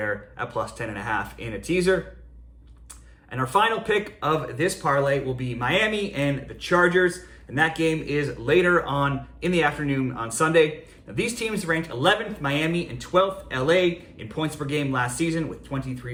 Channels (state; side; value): identical; both; correlation 1.00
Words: at plus 10.5 in a teaser. And our final pick of this parlay will be Miami and the Chargers, and that game is later on in the afternoon on Sunday. Now, these teams ranked 11th Miami and 12th LA in points per game last season with